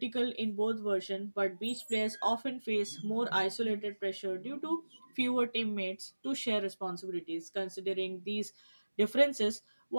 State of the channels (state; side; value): inverted; both; correlation -1.00